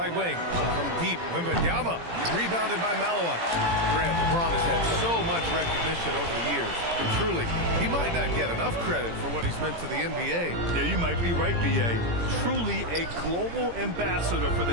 wing. From deep, Wembanyama. Rebounded by Malawach. Grant, LeBron has had so much recognition over the years. Truly, he might not get enough credit for what he's meant to the NBA. Yeah, you might be right, B.A. Truly a global ambassador for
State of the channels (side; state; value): left; late; 17 ms